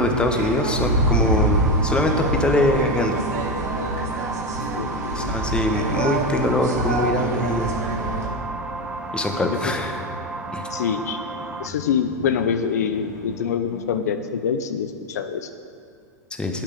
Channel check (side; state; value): both; normal; correlation 0.13